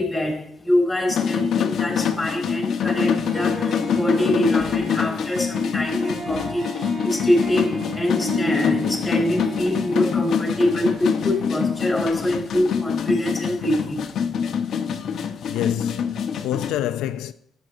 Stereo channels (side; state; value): right; quieter; 3.3 dB